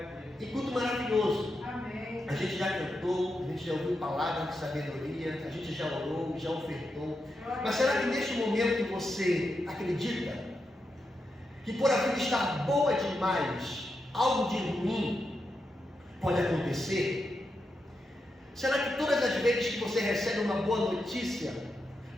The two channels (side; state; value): both; normal; correlation 0.86